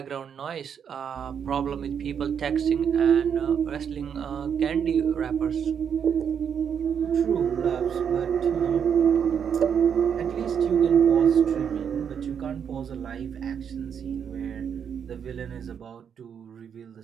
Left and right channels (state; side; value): quieter; left; 7.7 dB